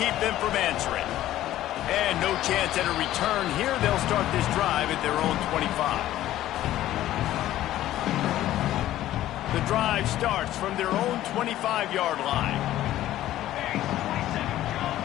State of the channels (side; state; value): right; quieter; 13.8 dB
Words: them from answering. And no chance at a return here. They'll start this drive at their own 25. The drive starts from their own 25-yard line.